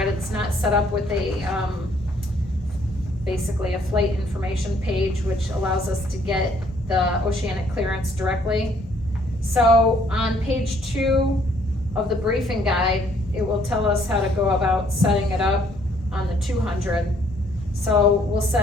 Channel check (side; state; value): both; normal; correlation 0.64